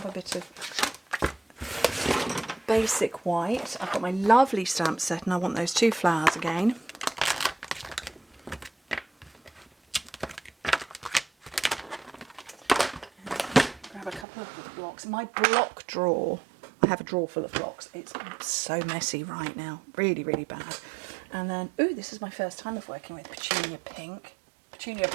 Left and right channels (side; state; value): left; drops out; at 14.2 s